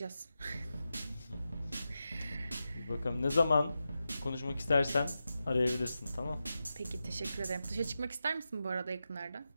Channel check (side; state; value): both; inverted; correlation -0.90